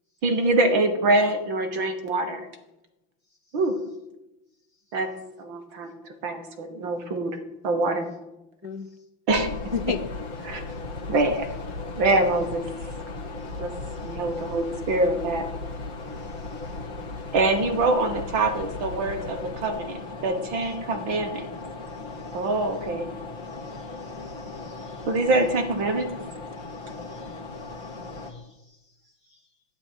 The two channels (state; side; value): late; left; 5.9 ms